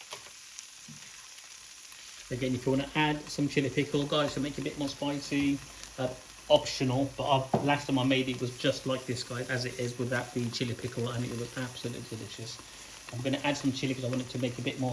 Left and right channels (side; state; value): both; identical; correlation 1.00